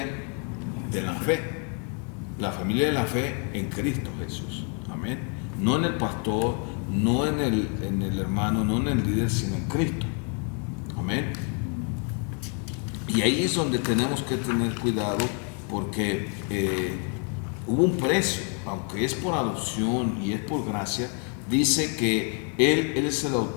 de la fe. La familia de la fe en Cristo Jesús. Amén. No en el pastor, no en el hermano, no en el líder, sino en Cristo. Amén. Y ahí es donde tenemos que tener cuidado, porque hubo un precio, aunque es por adopción y es por gracia. Dice que Él es el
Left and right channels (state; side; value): quieter; right; 36.6 dB